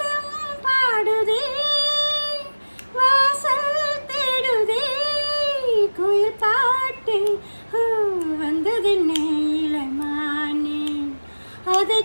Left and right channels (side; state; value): both; inverted; correlation -1.00